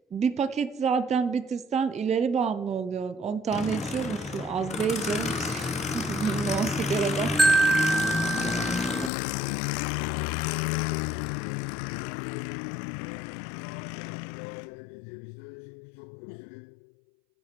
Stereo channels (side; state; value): right; drops out; at 9.1 s